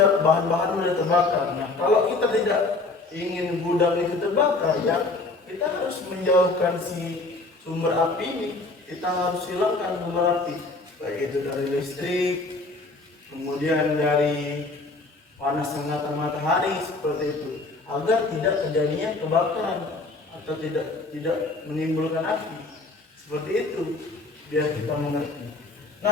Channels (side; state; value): right; quieter; 3.4 dB